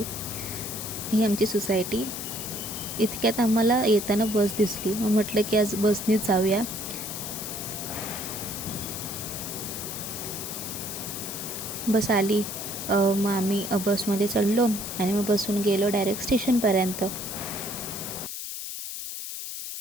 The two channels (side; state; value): left; noise; hiss, 6 dB below the sound